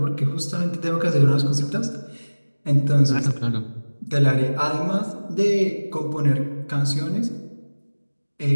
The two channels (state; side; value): inverted; both; correlation -1.00